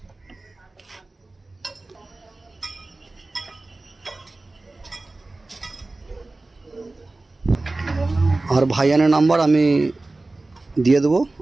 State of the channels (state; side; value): quieter; left; 3.1 dB